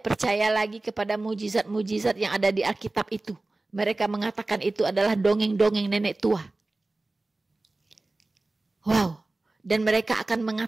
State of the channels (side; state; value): left; quieter; 3.0 dB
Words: percaya lagi kepada mujizat-mujizat yang ada di Alkitab itu. Mereka mengatakan itu adalah dongeng-dongeng nenek tua. Wow. Dan mereka akan